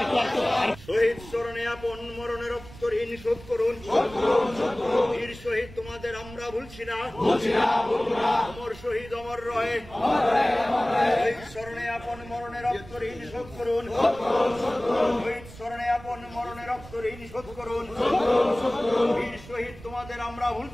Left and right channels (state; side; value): noise; right; rumble, 17 dB below the sound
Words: শহীদ স্মরণে আপন মরণে রক্ত ঋণ শোধ করুন। বীর শহীদ তোমাদের আমরা ভুলছি না। অমর শহীদ অমর রয়ে। শহীদ স্মরণে আপন মরণে রক্ত ঋণ শোধ করুন। শহীদ স্মরণে আপন মরণে রক্ত ঋণ শোধ করুন। বীর শহীদ তোমাদের আমরা